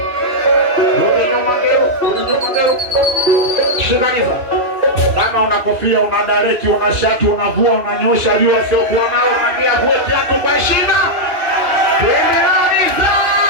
Rudi nyuma ngero. Shikaniza. Kama una kofia, una dareki, una shati, unavua, unanyosha jua sio kuwa nao, mwambie vue kiatu kwa heshima. Tuendeleza.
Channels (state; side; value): late; left; 2.6 ms